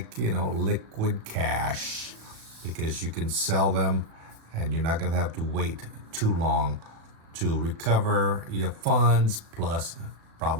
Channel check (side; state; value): left; late; 36 ms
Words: liquid cash, because you can sell them and you're not going to have to wait too long to recover your funds, plus